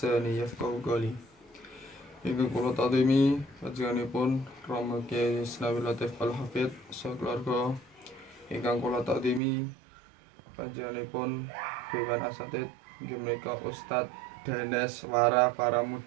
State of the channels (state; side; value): drops out; left; at 9.4 s